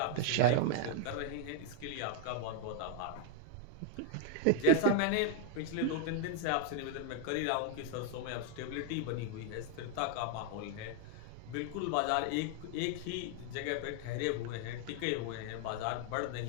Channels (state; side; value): different; both; correlation 0.00